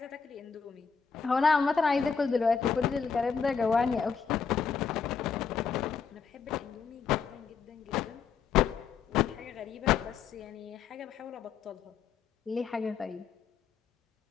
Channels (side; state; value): right; quieter; 6.1 dB